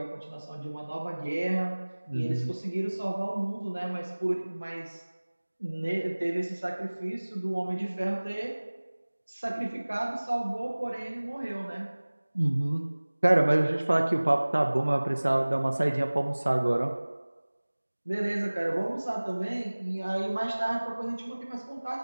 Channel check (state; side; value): inverted; both; correlation -1.00